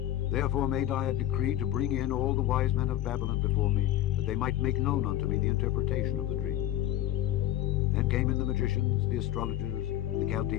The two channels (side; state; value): right; quieter; 13.1 dB